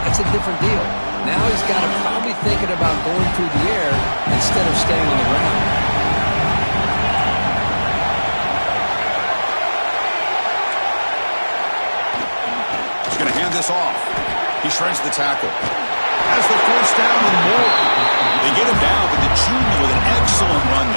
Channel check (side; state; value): both; inverted; correlation -1.00